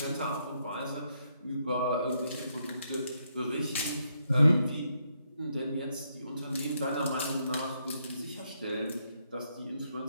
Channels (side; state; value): both; inverted; correlation -0.77